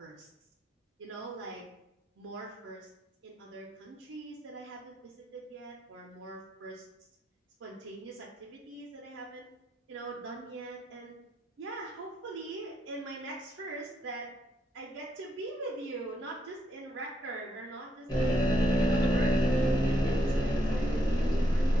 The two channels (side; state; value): both; normal; correlation 0.78